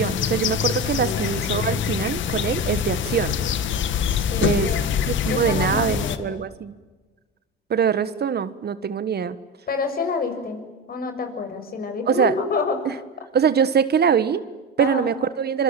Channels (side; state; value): both; normal; correlation 0.22